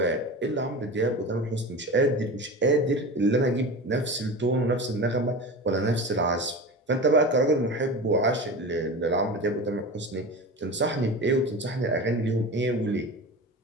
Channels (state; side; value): normal; both; correlation 0.29